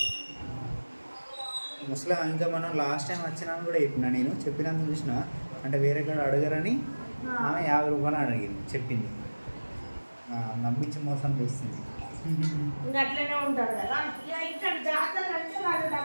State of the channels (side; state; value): both; inverted; correlation -1.00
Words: ముస్లిం ఇంకా మనం లాస్ట్ టైం వచ్చినా కూడా నేను చెప్పినందుకు చూసిన, అంటే వేరే కాడ అడగరని ఆమె 50 రూపాయలు అడిగింది, చెప్పింది. నమ్మించి మోసం చేస్తుంది. ఇంకా అట్లనే ఉంటారు కదా. ఇక్కడ జాతర అంటే వాళ్ళు